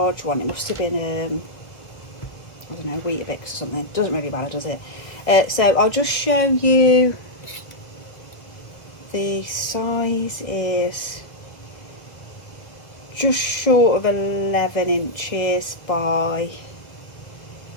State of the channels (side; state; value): right; late; 1.5 ms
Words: one. It must have been I don't know, Weetabix or something. Doesn't really matter, does it? So I'll just show you. The size is just short of 11 inches by